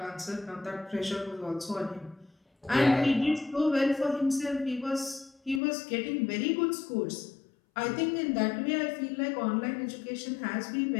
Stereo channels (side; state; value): right; drops out; at 5.6 s